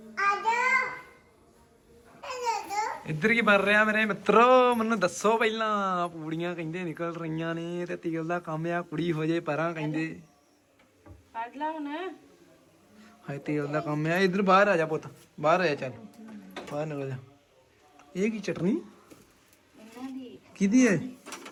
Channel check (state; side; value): identical; both; correlation 1.00